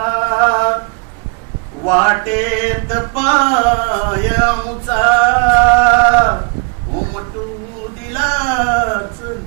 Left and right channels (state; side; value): quieter; left; 34.6 dB